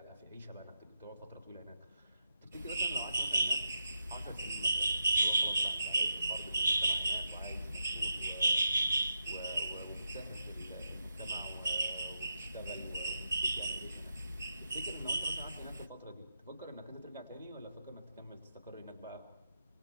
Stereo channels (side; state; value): both; inverted; correlation -0.87